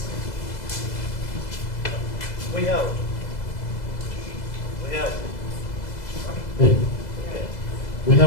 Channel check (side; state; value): right; late; 2.0 ms